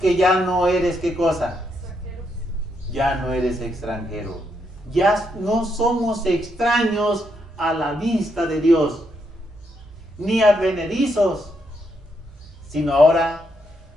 ya no eres, ¿qué cosa? Ya no eres extranjero. Ya no somos extraños a la vista de Dios, ni advenedizos, sino ahora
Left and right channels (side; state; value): both; normal; correlation 0.78